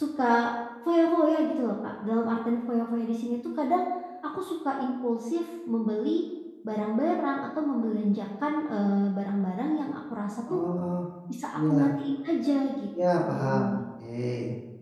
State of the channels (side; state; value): both; identical; correlation 1.00